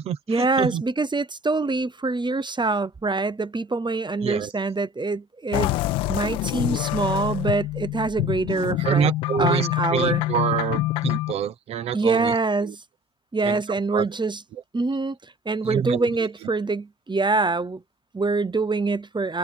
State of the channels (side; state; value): both; normal; correlation 0.49